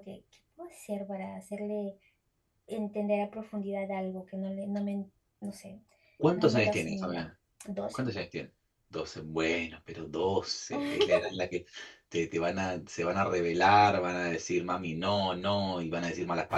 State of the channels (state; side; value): identical; both; correlation 1.00